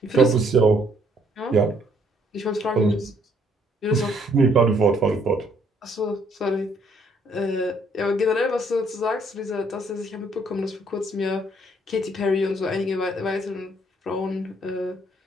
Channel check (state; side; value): normal; both; correlation 0.66